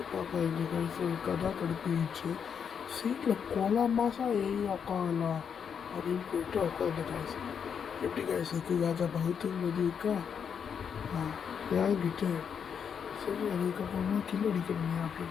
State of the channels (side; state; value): right; quieter; 7.2 dB